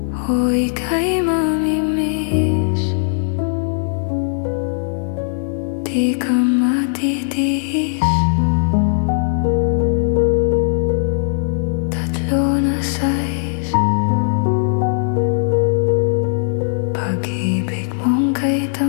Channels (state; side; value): silent; right; digital silence